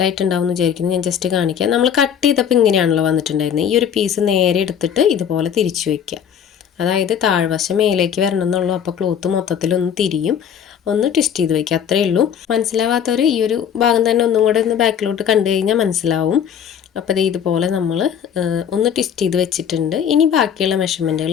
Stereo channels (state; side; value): quieter; right; 8.4 dB